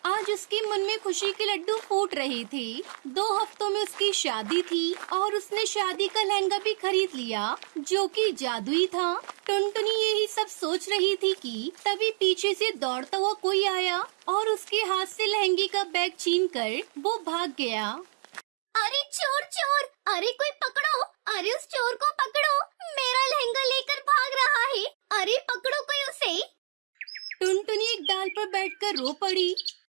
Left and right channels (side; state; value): left; silent; digital silence